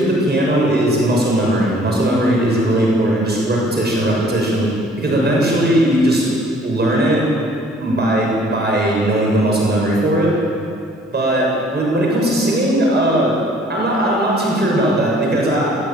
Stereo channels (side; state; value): both; normal; correlation 0.56